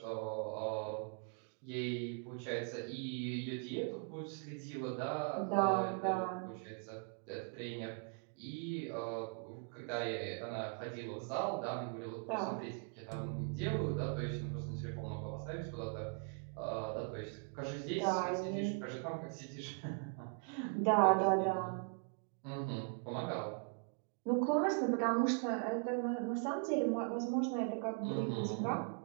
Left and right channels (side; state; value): left; quieter; 37.8 dB